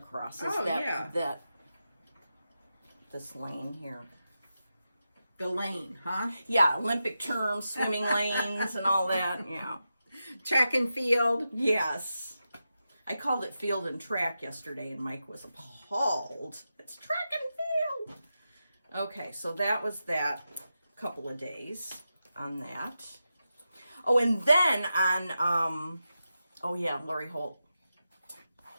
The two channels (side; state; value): both; inverted; correlation -0.89